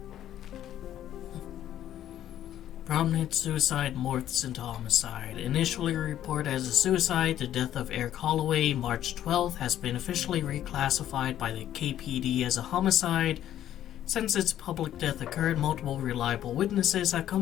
Prominent suicide morphs into homicide. Initially reported as a suicide, the death of Eric Holloway, March 12th, has been officially reclassified by the KPD as a homicide. Since its public death occurred, multiple reliable witnesses have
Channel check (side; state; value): right; quieter; 11.7 dB